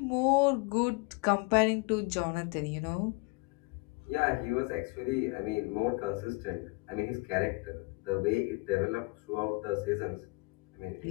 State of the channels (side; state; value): right; quieter; 28.0 dB